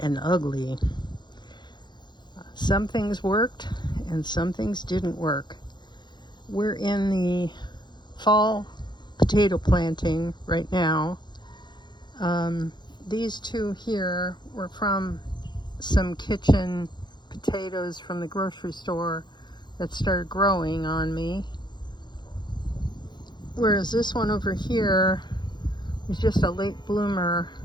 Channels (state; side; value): late; right; 0.21 ms